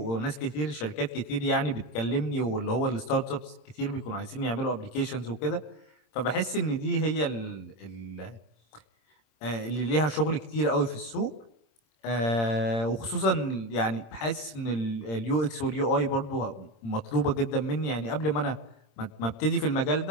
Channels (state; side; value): late; right; 26 ms